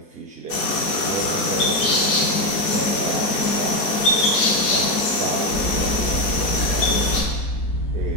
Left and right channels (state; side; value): late; right; 4.7 ms